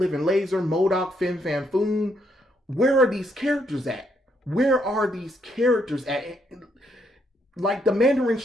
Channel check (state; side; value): normal; both; correlation 0.74